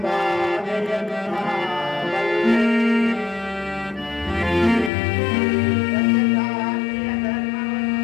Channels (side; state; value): right; drops out; at 4.9 s